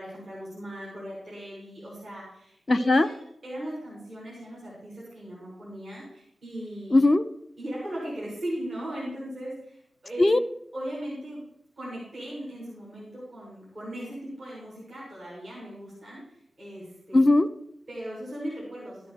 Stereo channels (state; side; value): normal; both; correlation 0.96